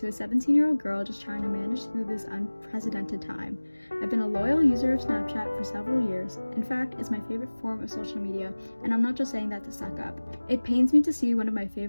a 17-year-old girl just trying to manage through this unprecedented time. I've been a loyal user of Snapchat for several years. In fact, it's my favorite form of social media, and I'm not just saying that to suck up. It pains me to see one of my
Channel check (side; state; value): both; inverted; correlation -1.00